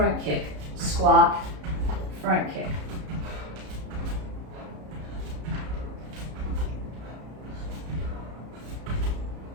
kick, squat, front kick.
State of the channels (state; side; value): late; left; 33 ms